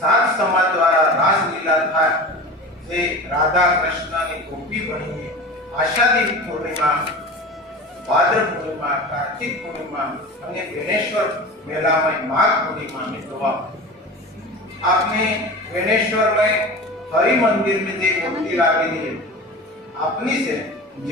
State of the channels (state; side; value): normal; both; correlation 0.33